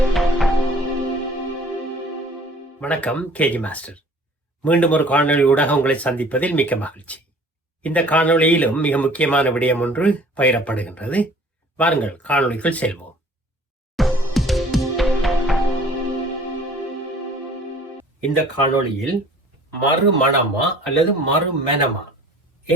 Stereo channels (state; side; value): normal; both; correlation 0.51